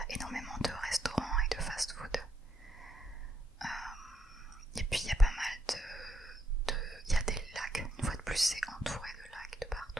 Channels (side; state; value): both; normal; correlation 0.77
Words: énormément de restaurants et de fast-food, et puis il y a pas mal il y a des lacs, une fois de plus c'est entouré de lacs de